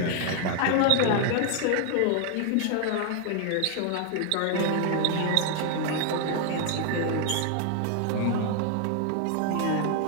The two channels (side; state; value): both; different; correlation 0.00